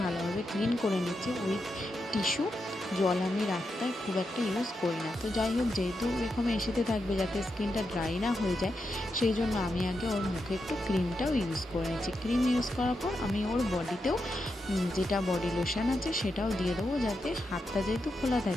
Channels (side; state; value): both; normal; correlation 0.86